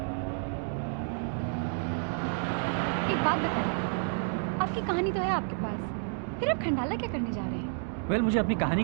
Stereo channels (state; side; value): silent; left; 58 dB below the other